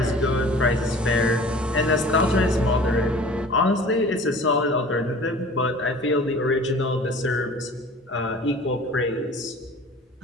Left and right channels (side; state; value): both; normal; correlation 0.44